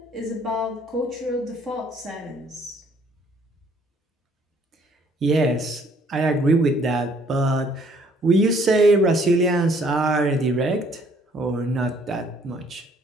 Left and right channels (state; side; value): normal; both; correlation 0.62